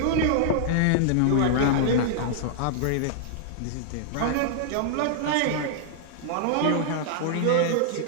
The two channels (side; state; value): both; different; correlation -0.01